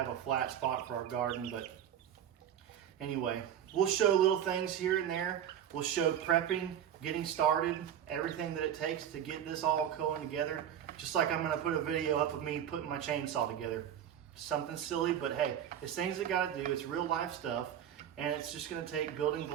a flat spot for our garden. But anyway, we'll show little things here and there. We'll show prepping, getting started, everything that it takes to get this all going together. Just like I'm gonna put a video up of me putting my chainsaw together. Something silly, but hey, it's things that gotta do. It's real life stuff, and it's just gonna take building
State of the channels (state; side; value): quieter; left; 9.9 dB